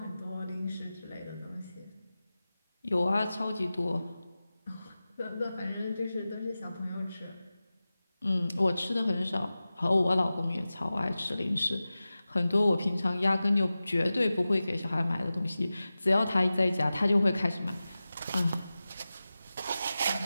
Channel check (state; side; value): inverted; both; correlation -0.95